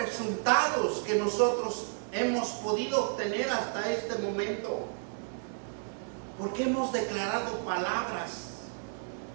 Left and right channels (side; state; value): left; silent; digital silence